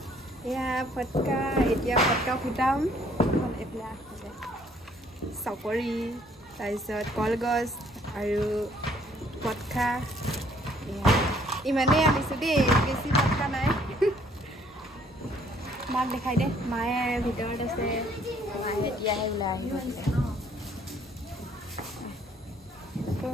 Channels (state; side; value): normal; both; correlation 0.62